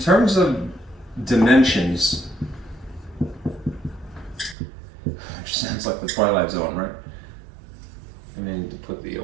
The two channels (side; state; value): left; drops out; at 4.5 s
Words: of dimensions, which sounds like the Twilight Zone, right? I need to put the